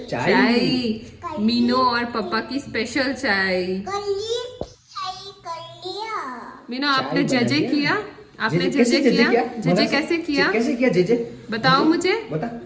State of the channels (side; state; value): both; identical; correlation 1.00